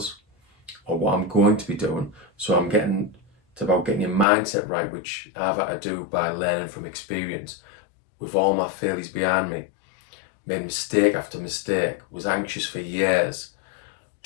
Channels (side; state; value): right; drops out; at 4.2 s